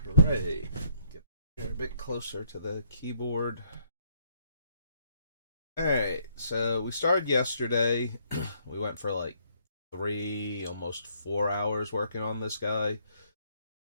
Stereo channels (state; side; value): inverted; both; correlation -0.69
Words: Hooray. Get here a bit closer to the keyboard. Alright, so we started yesterday. We went for like almost 4 hours working on this guy.